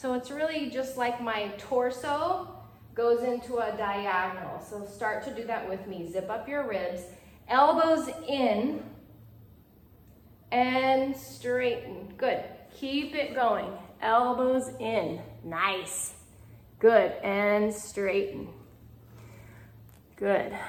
it's really just like my torso goes into a diagonal. So start to do that with me. Zip up your ribs, elbows in, and straighten. Good. Keep it going. Elbows in. Nice. Good. And straighten. Good.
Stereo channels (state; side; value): identical; both; correlation 1.00